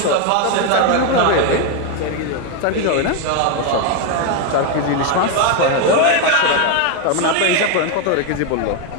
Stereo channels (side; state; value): both; different; correlation 0.01